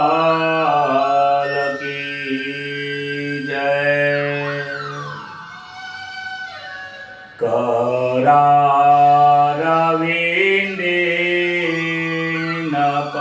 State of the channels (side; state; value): both; identical; correlation 1.00